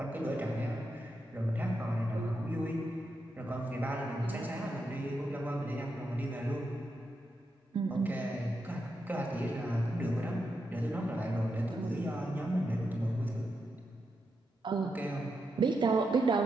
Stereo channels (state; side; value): normal; both; correlation 0.85